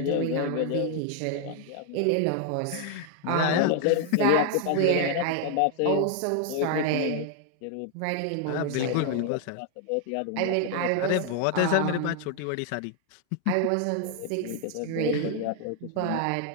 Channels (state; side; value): different; both; correlation 0.00